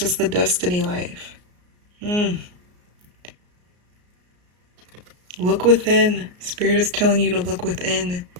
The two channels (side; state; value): left; late; 33 ms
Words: the destiny life. Look within. Spirit is telling you to look within,